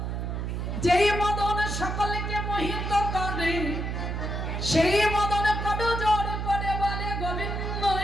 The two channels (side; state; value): right; noise; hum, 3 dB below the sound